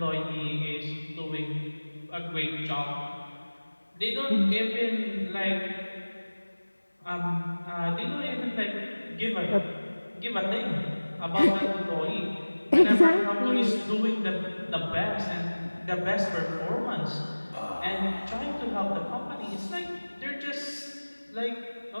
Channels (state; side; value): inverted; both; correlation -1.00